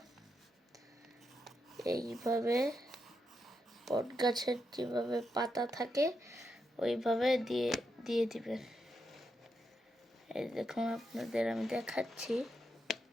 এইভাবে বট গাছের যেভাবে পাতা থাকে ওইভাবে দিয়ে দিবেন। এই দেখুন আপনাদের আমি দেখাচ্ছি।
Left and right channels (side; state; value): both; normal; correlation 0.84